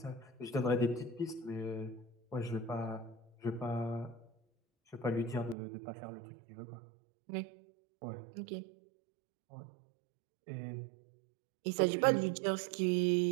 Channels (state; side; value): drops out; left; at 5.6 s